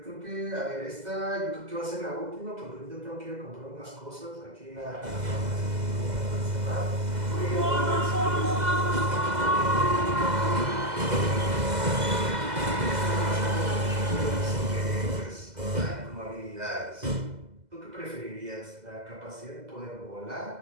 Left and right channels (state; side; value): late; left; 2.0 ms